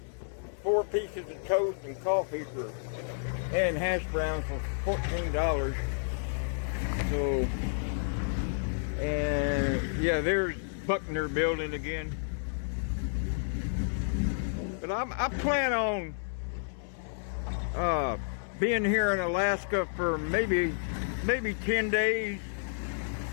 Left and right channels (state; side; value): silent; right; 57 dB below the other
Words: 4 pieces of toast, and coffee and hash browns for $14. So, and yeah, there's Buckner Building again. But I plan on being here in Alaska for maybe 10 days,